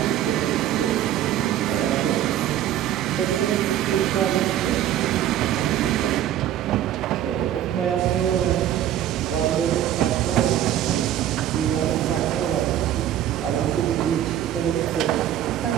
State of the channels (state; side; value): quieter; left; 11.5 dB